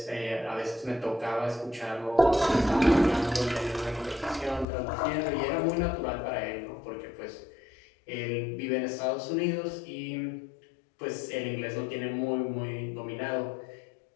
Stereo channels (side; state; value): right; drops out; at 4.7 s